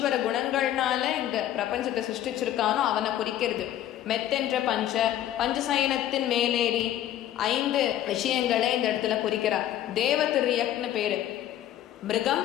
குணங்கள்னால இந்த பிரபஞ்சத்தை சிருஷ்டிச்சிருக்கானோ அவனை குறிக்கிறது. மெத்தென்ற பஞ்ச, பஞ்சசயனத்தின் மேலேறி 5 விஷயங்களை இந்த இடத்துல குறிக்கிறார். தேவதிரியக்னு பேரு. மிருகம்,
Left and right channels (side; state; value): right; quieter; 12.1 dB